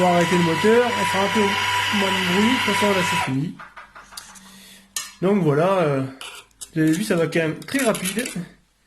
arrêter le moteur, on fera un peu moins de bruit, de toute façon là c'est fini. Donc voilà, vous avez vu ça va quand même très rapide.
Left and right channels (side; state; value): both; identical; correlation 1.00